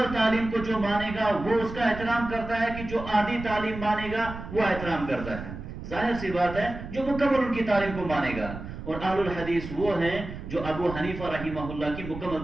تعلیم کو جو مانے گا وہ اس کا احترام کرتا ہے، کہ جو آدھی تعلیم مانے گا وہ احترام کرتا ہے۔ ظاہر سی بات ہے، جو مکمل ان کی تعلیم کو مانے گا، اور اہل الحدیث وہ ہیں جو ابو حنیفہ رحمہ اللہ کی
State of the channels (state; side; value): noise; right; rumble, 10 dB below the sound